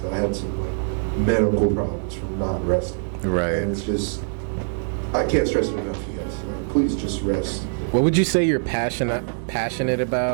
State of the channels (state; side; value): silent; left; 63 dB below the other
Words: I had some like medical problems from not resting. Right. And it's just, I can't stress it enough, you guys. Like, please just rest. What would you say you're passionate